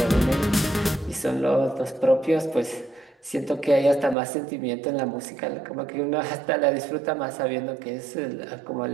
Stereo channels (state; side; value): drops out; left; at 4.2 s